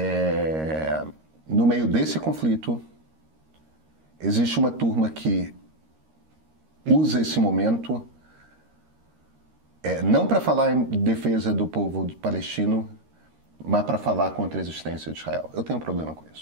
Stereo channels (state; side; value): late; left; 13 ms